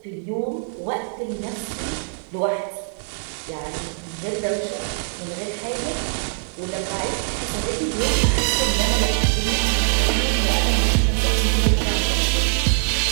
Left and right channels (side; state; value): left; silent; 64 dB below the other